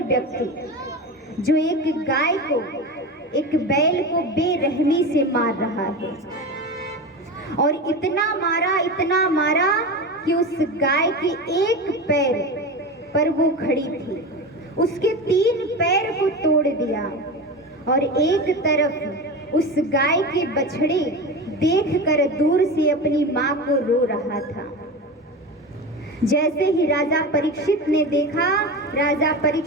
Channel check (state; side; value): normal; both; correlation 0.25